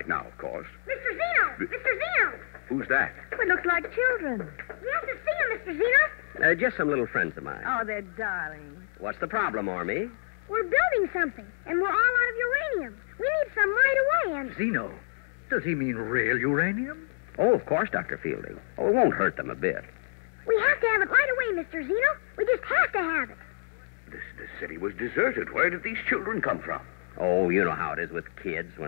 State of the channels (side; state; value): right; silent; digital silence